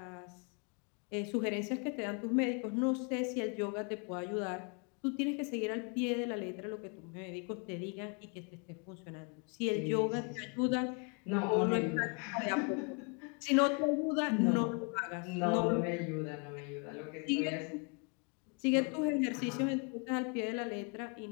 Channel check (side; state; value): right; quieter; 36.2 dB